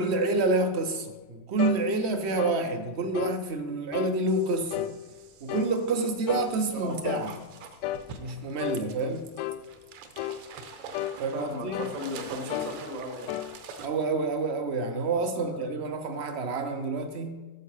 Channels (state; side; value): late; left; 3.1 ms